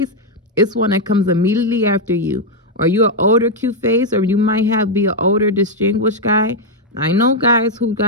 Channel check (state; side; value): normal; both; correlation 0.00